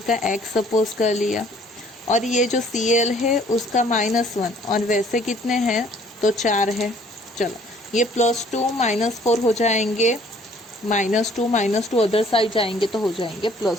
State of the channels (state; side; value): normal; both; correlation 0.58